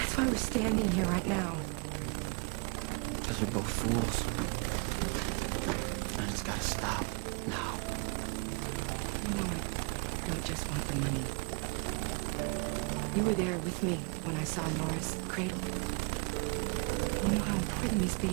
why we're standing here right now. Because we're both fools. And it's gotta stop now. No, I just want the money. You were there with me when I saw Nora's cradle. You know how important this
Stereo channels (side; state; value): left; quieter; 32.0 dB